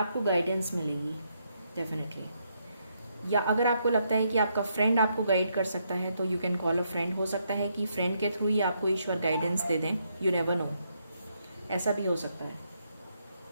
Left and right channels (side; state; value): both; inverted; correlation -0.77